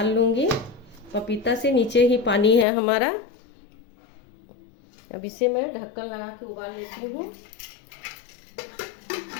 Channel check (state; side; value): drops out; right; at 2.7 s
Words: लूँगी। पपीता से नीचे ही पानी है हमारा। अब इसे मैं ढक्कन लगा के उबाल लेती हूँ।